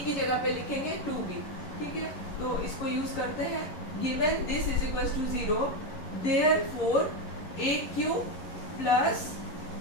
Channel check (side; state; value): right; late; 11 ms